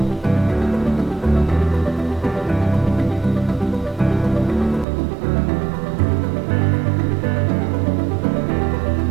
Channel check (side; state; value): left; drops out; at 4.9 s